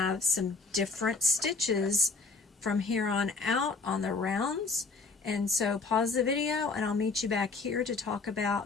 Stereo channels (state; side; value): quieter; right; 4.1 dB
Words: some different stitches from here on out on the rounds, and so pause the video and I'll meet you back here to talk